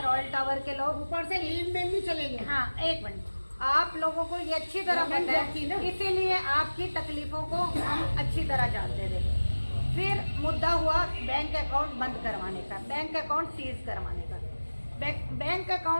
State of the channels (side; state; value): both; inverted; correlation -1.00